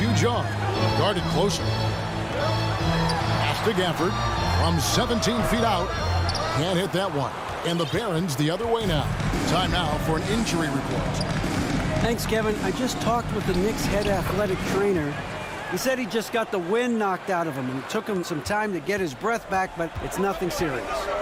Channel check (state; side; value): identical; both; correlation 1.00